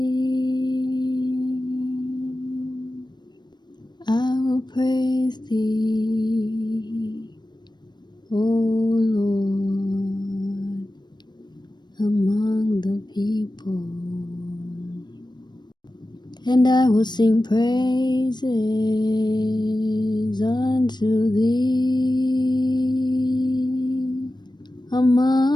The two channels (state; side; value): late; right; 0.21 ms